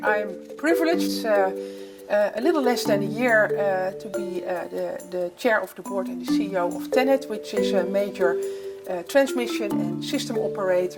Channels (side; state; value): both; identical; correlation 1.00